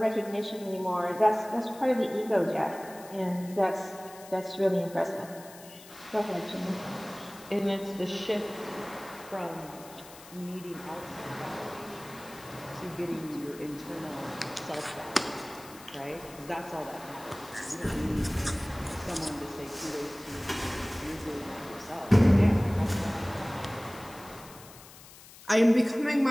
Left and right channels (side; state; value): left; noise; hiss, 19 dB below the sound